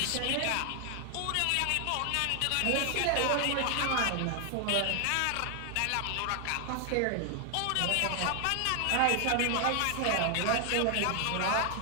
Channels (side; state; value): both; different; correlation 0.00